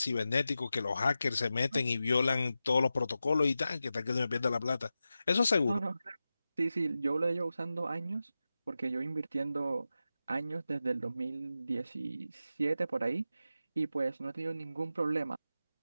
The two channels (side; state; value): both; inverted; correlation -0.92